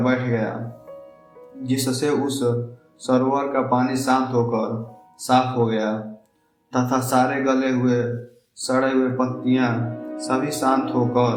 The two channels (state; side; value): identical; both; correlation 1.00